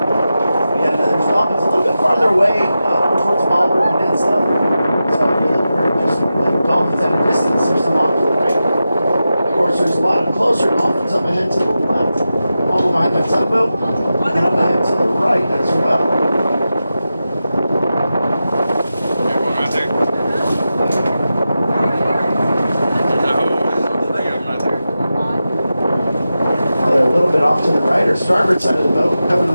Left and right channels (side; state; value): both; inverted; correlation -0.92